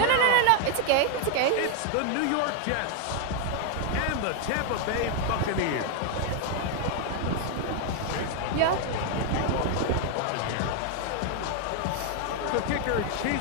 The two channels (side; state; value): both; different; correlation 0.00